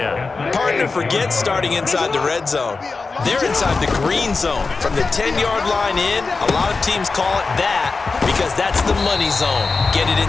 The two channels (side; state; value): right; quieter; 4.2 dB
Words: Partner, forget starting inside the red zone. They're inside the green zone. From the 10-yard line in, a lot of teams call it that because that's the money zone. Get it